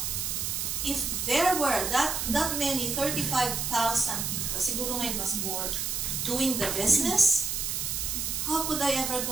If there were that many, 35,000 people, siguro ngayon mas more, doing the business, how could I ever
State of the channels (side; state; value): right; noise; hiss, 1 dB below the sound